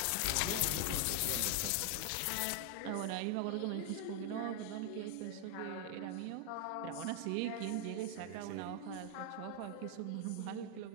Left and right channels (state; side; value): different; both; correlation 0.00